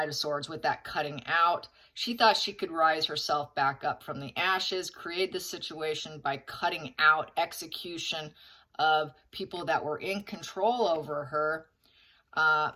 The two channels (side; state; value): both; identical; correlation 1.00